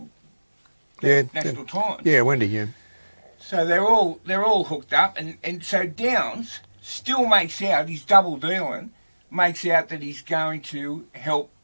Times. Yeah, Wendy, yeah. So they're all hooked up, and so Downs still makes out, he's double dealing, makes out that he's going to help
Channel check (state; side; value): inverted; both; correlation -1.00